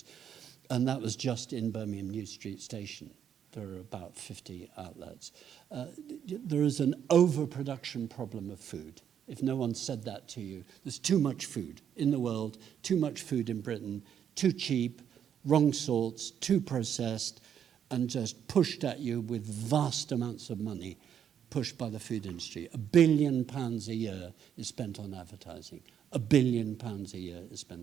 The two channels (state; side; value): quieter; left; 8.8 dB